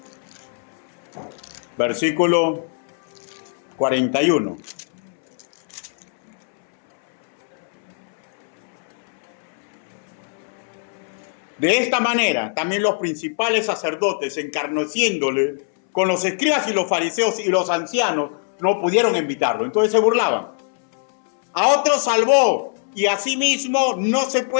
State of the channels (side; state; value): right; silent; 64 dB below the other